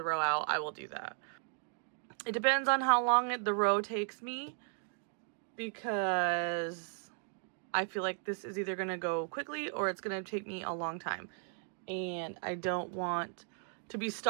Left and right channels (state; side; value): silent; left; 54 dB below the other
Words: row out, I will do that. It depends on how long the row takes me, because I feel like this is either going to go quickly or it's going to take me a long time. And I don't want to be